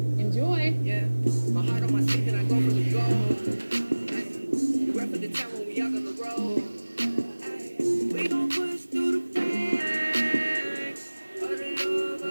Enjoy. Yeah, my heart on my sleeve and I go for the goal. We rep for the town when we out on the road. We gon' push through the pain of the love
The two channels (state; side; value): inverted; both; correlation -1.00